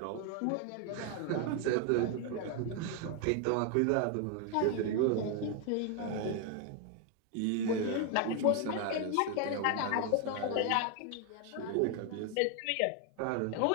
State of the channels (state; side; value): different; both; correlation 0.01